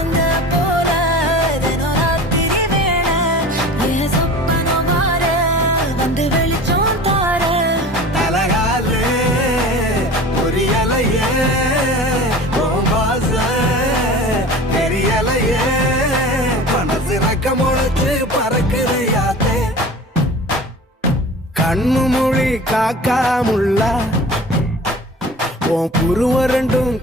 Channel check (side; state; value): both; normal; correlation 0.39